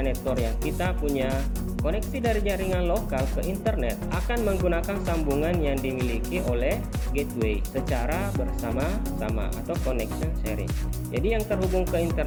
network yang kita punya. Koneksi dari jaringan lokal ke internet akan menggunakan sambungan yang dimiliki oleh gateway secara bersama-sama atau connection sharing. Jadi yang terhubung ke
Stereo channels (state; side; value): identical; both; correlation 1.00